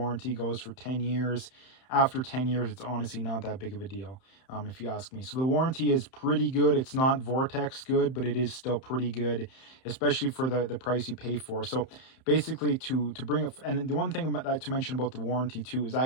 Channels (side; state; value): right; late; 31 ms